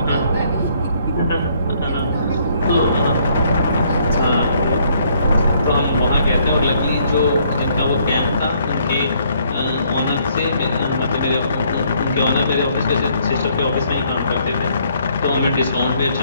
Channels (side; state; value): both; inverted; correlation -0.66